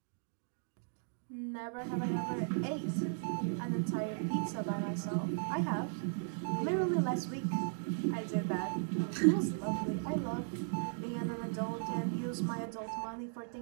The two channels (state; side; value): silent; left; digital silence